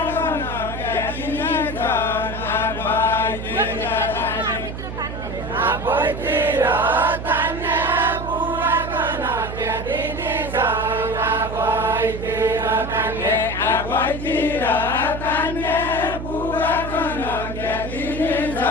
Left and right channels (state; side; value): noise; right; hum, 8 dB below the sound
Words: आफैतिर तान्ने बुवाको नदिया दिने छ आफैतिर तान्ने आफैतिर तान्ने बुवाको नदिया दिने